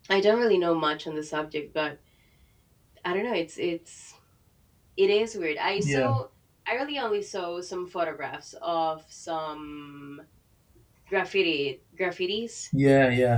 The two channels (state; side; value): identical; both; correlation 1.00